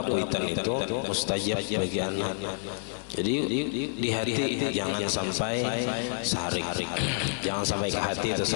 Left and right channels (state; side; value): silent; right; digital silence